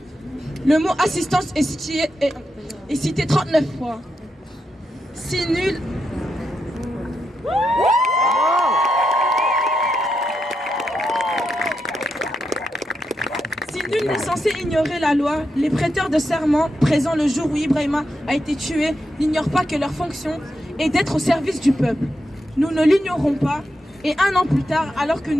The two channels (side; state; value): both; normal; correlation 0.85